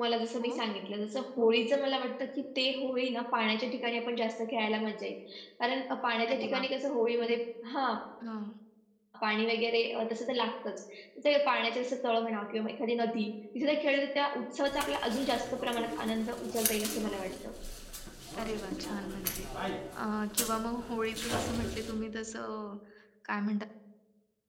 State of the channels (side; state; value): both; identical; correlation 1.00